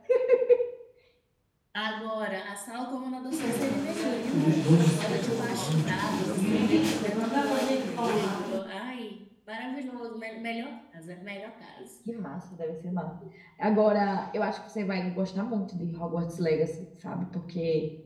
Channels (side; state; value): both; identical; correlation 1.00